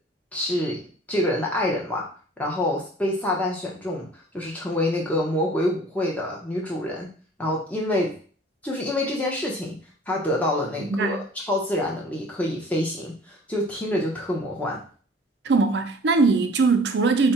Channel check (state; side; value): normal; both; correlation 0.49